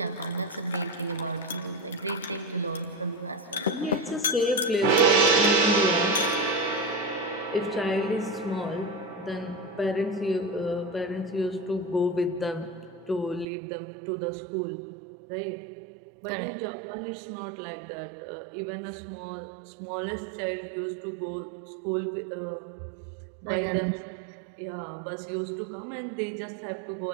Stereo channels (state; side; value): drops out; left; at 13.5 s